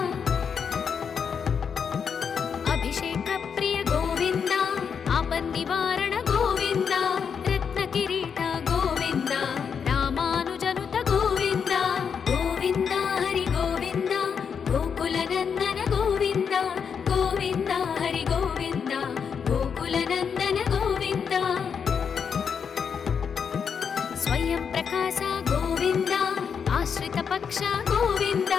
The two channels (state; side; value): quieter; right; 6.7 dB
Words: ಅಭಿಷೇಕ ಪ್ರಿಯ ಗೋವಿಂದ ಆಪನ್ ನಿವಾರಣ ಗೋವಿಂದ ರತ್ನ ಕಿರೀಟ ಗೋವಿಂದ ರಾಮಾನುಜನುತ ಗೋವಿಂದ ಗೋವಿಂದ ಹರಿ ಗೋವಿಂದ ಗೋಕುಲನಂದನ ಗೋವಿಂದ ಗೋವಿಂದ ಹರಿ ಗೋವಿಂದ ಗೋಕುಲನಂದನ ಗೋವಿಂದ ಸ್ವಯಂ ಪ್ರಕಾಶ ಗೋವಿಂದ ಆಶ್ರಿತ ಪಕ್ಷ ಗೋವಿಂದ